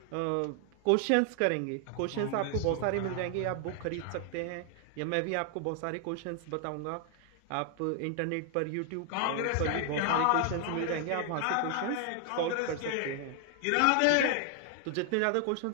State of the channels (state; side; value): different; both; correlation 0.00